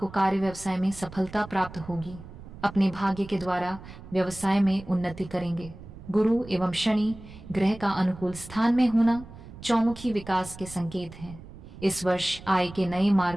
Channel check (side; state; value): right; noise; rumble, 16 dB below the sound